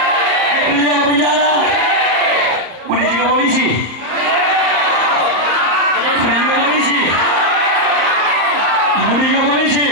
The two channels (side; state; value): left; late; 34 ms